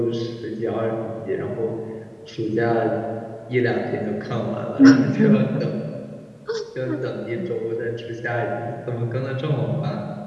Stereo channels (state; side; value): identical; both; correlation 1.00